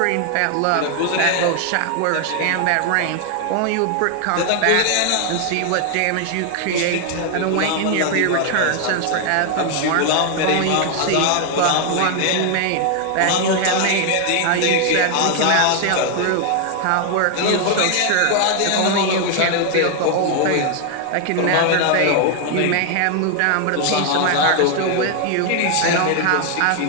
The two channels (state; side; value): different; both; correlation 0.00